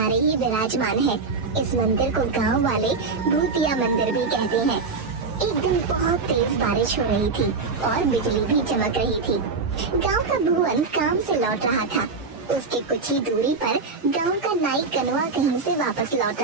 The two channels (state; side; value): quieter; left; 4.4 dB